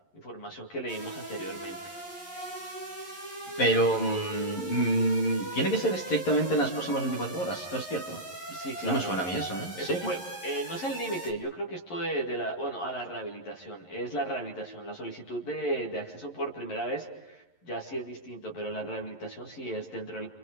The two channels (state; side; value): late; right; 11 ms